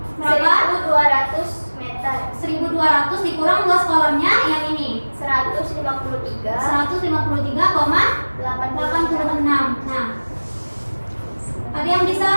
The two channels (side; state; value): both; inverted; correlation -1.00